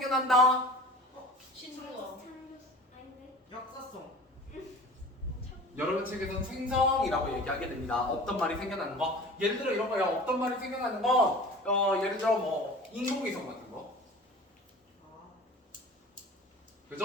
신조어. 역사성. 여러분 책에서는 생성이라고 얘기하게 됩니다. 없던 말이 생겨나는 거. 예를 들어 이런 거예요. 없던 말이 생겨나는 건 예를 들어 뭐 인공위성 같은 거.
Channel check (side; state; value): both; normal; correlation 0.40